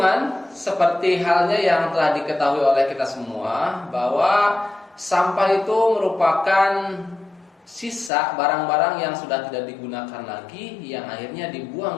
seperti halnya yang telah diketahui oleh kita semua bahwa sampah itu merupakan sisa barang-barang yang sudah tidak digunakan lagi yang akhirnya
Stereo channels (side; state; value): right; drops out; at 8.1 s